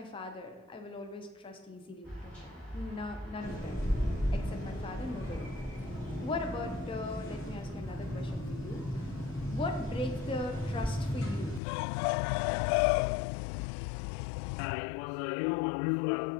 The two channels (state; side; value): drops out; right; at 11.6 s